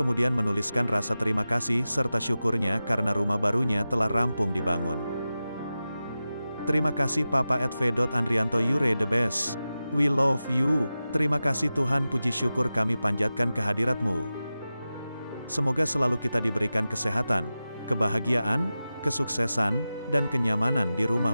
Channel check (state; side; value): inverted; both; correlation -0.94